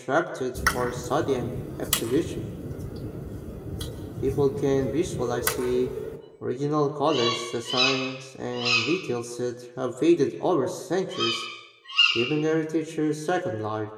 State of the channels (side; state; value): both; identical; correlation 1.00